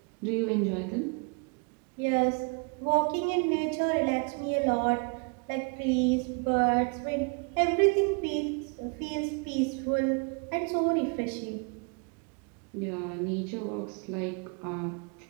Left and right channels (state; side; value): quieter; left; 34.8 dB